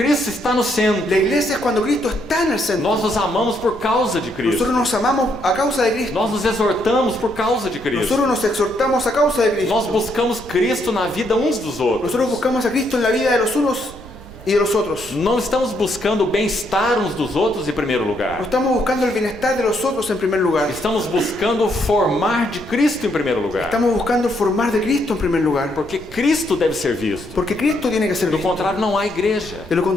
está no centro. La iglesia es cuando Cristo está en el centro. Nós nos amamos por causa de Cristo. Nosotros nos amamos a causa de Cristo. Nós nos exortamos por causa de Cristo. Nosotros nos exhortamos a causa de Cristo. Nós buscamos Cristo na vida uns dos outros. Nosotros buscamos a Cristo en la vida de los unos y de los otros. Não estamos buscando o bem-estar uns dos outros em primeiro No lugar. estamos buscando el bienestar de los otros en primer lugar. Estamos buscando formar de Cristo em primeiro lugar. Estamos buscando formar de Cristo en primer lugar. Porque Cristo deve ser visto. Porque Cristo tiene que ser Do visto. contrário, não há igreja. De lo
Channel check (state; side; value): noise; right; rumble, 18 dB below the sound